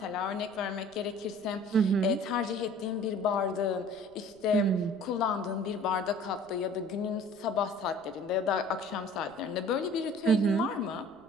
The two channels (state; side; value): noise; right; rumble, 29 dB below the sound